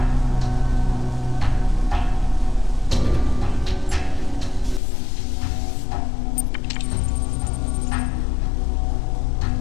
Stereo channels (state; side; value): drops out; right; at 4.8 s